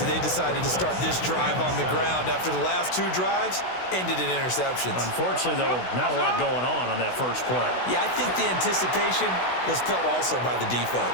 that they decided to start this drive on the ground after the last 2 drives ended in interceptions. Unfortunately, though, not a lot going on that first play. Yeah, I think the anticipation was felt also by the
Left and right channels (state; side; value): late; right; 16 ms